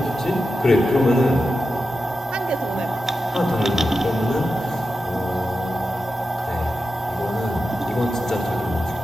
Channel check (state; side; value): normal; both; correlation 0.90